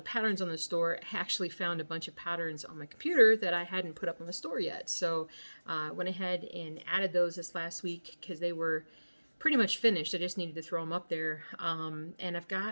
patterns on the store, I actually found a bunch of patterns on my computer that I hadn't put up on the store yet. So went ahead and added those this last week because they were pretty much finished. I just needed to throw them up there. And I've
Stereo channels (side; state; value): both; inverted; correlation -1.00